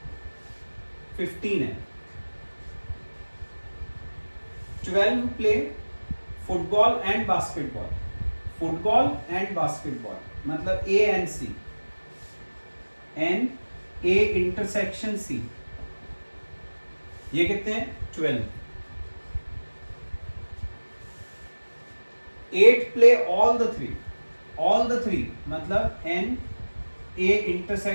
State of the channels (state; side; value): inverted; both; correlation -1.00